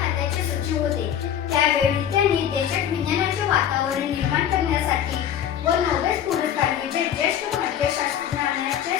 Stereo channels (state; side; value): quieter; right; 9.6 dB